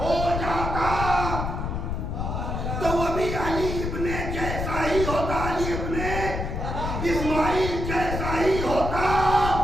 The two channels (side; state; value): left; noise; rumble, 3 dB below the sound